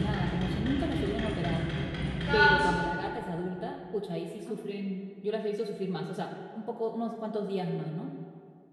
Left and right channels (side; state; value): both; identical; correlation 1.00